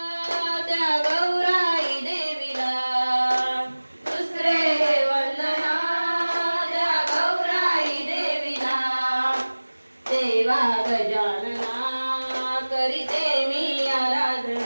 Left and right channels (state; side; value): inverted; both; correlation -1.00